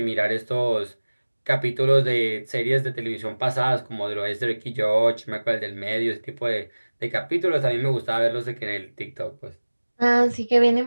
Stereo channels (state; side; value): inverted; both; correlation -1.00